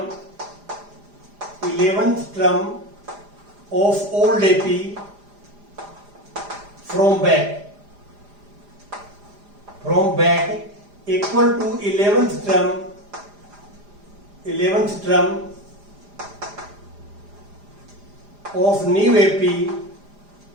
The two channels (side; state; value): left; late; 4.9 ms